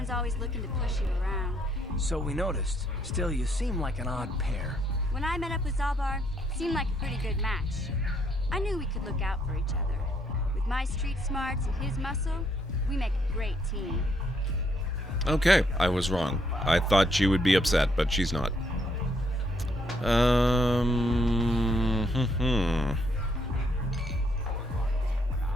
always looking to push you around. So we noticed. Still, you seem like an odd pair. When I met up with Zalbar, it seemed like a pretty good match. I knew we could look out for each other. With my street smarts and his muscle, we make a great team. Okay, I was wrong. I thought she would be upset, but she's not.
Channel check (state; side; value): normal; both; correlation 0.72